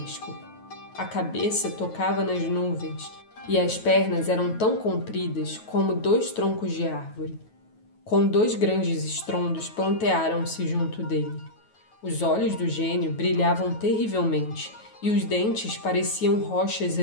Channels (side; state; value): right; late; 9.3 ms